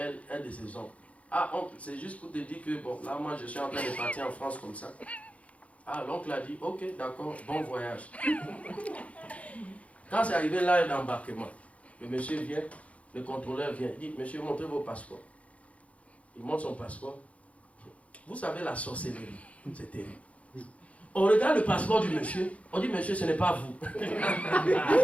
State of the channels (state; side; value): late; right; 0.065 ms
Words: un de ses oncles. Ah, oncle, c'est juste pour te dire que, bon, là moi je suis en train de partir en France comme ça. Ah, l'oncle a dit, ok, d'accord, bon voyage. Quand c'est arrivé là d'embarquement, le monsieur vient, le contrôleur vient, il dit, monsieur, montrez vos passeports. Il montre son passeport. Vous savez la sorcellerie, c'est terrible. On regarde le passeport du monsieur, on dit, monsieur, ce n'est pas vous.